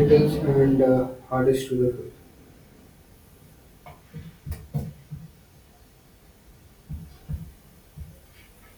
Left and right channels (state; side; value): identical; both; correlation 1.00